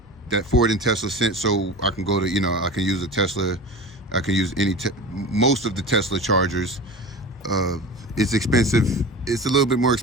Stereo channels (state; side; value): normal; both; correlation 0.33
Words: So I can go to, I can use a Tesla. I can use most of the Tesla chargers. It's expensive. It's a little bit more